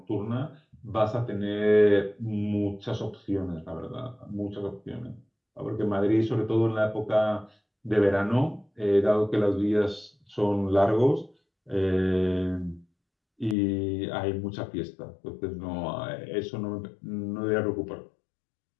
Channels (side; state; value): right; drops out; at 13.6 s